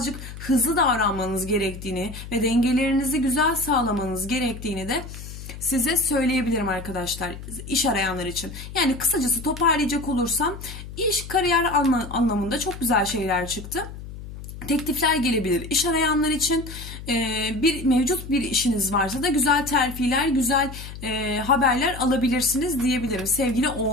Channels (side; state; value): left; noise; hum, 12 dB below the sound